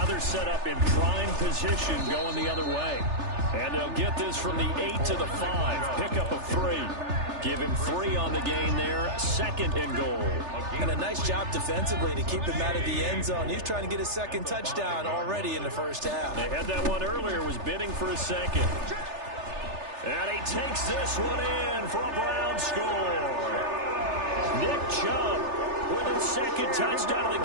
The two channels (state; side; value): late; left; 3.3 ms